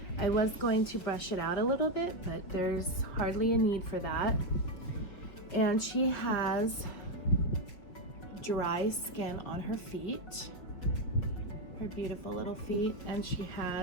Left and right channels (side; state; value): right; late; 5.2 ms